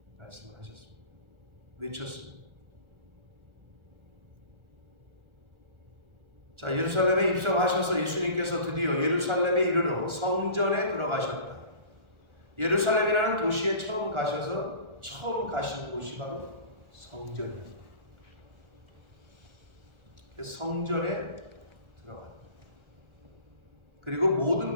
말씀을 하셨습니다. 외쳤습니다. 자, 예루살렘에 입성하셔서 예수님께서 드디어 예루살렘에 이르러 성전에 들어가셨다. 예루살렘이라는 도시에 처음 가셔서 처음 가신 곳이 바로 성전이었다. 성전에 들어갔다. 그리고 모든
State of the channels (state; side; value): late; left; 1.4 ms